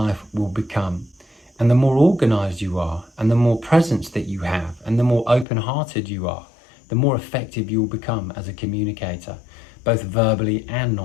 will become. And the more organized you are, and the more presence that you have, and the more open-hearted you are, the more effective you'll become as a communicator, both verbally and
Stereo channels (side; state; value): right; drops out; at 5.5 s